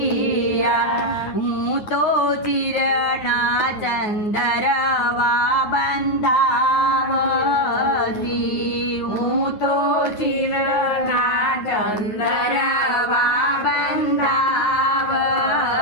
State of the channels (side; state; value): right; late; 9.5 ms